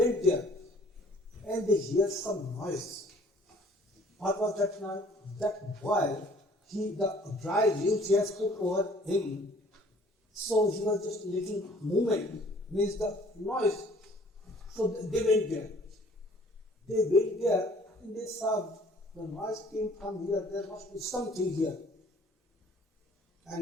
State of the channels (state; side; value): normal; both; correlation 0.56